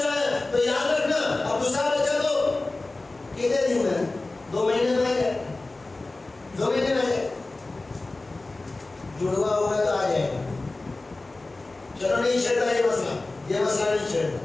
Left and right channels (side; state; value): right; quieter; 3.1 dB